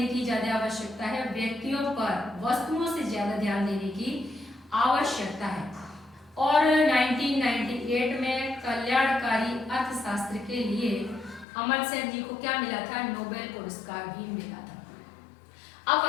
की ज्यादा आवश्यकता है? व्यक्तियों पर, वस्तुओं से ज्यादा ध्यान देने की आवश्यकता है। और 1998 में कल्याणकारी अर्थशास्त्र के लिए अमर्त्य सेन जी को क्या मिला था? नोबेल पुरस्कार भी मिला था। अब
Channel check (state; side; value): drops out; right; at 11.5 s